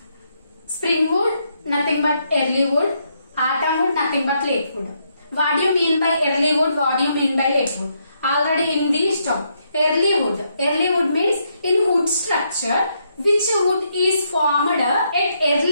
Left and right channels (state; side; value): inverted; both; correlation -0.77